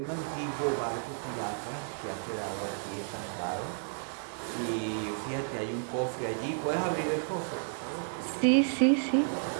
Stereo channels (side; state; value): left; silent; digital silence